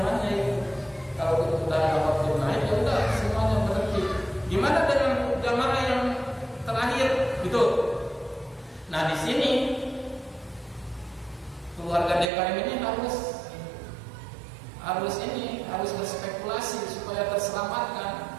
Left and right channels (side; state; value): left; drops out; at 12.3 s